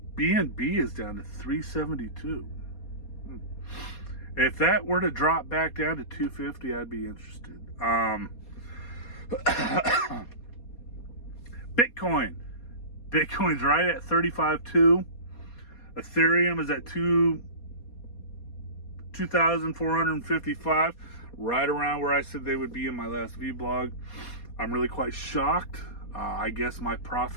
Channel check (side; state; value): right; late; 4.2 ms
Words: BNB is down to 372. If that were to drop back down to 250, I'd be interested. Bitcoin's right at 35.2. Ethereum is at 2,455, right around where I said they would be in my last vlog. I'm really quite shocked. I guess my